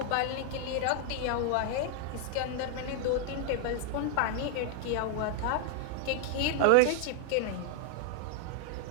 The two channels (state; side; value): different; both; correlation 0.00